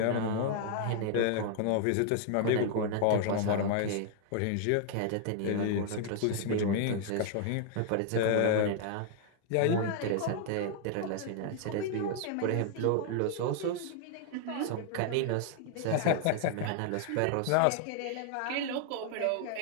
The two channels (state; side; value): different; both; correlation 0.00